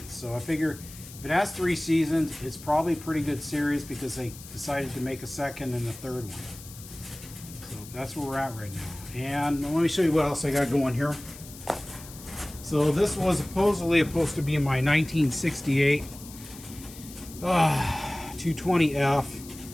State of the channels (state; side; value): noise; left; hiss, 16 dB below the sound